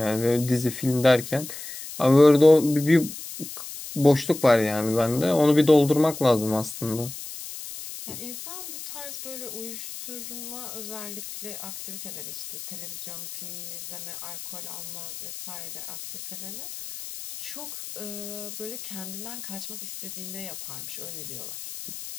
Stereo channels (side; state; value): left; noise; hiss, 10 dB below the sound